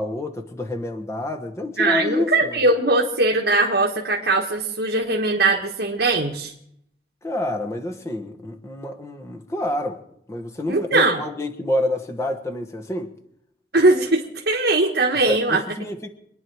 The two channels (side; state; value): both; normal; correlation 0.23